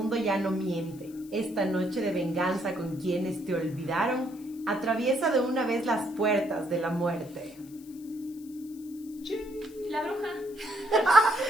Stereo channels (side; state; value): left; noise; hiss, 23 dB below the sound